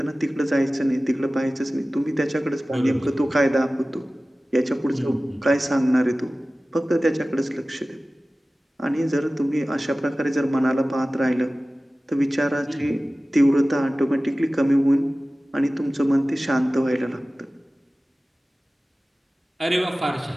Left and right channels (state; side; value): normal; both; correlation 0.97